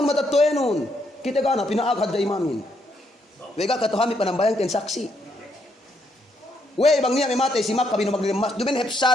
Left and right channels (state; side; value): normal; both; correlation 0.75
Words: matatoenon kita gana pinaagad da imamin wega katuhami panambayang ten saksi. We bang niya may matay si Makka binu magdilim masjid. Dumen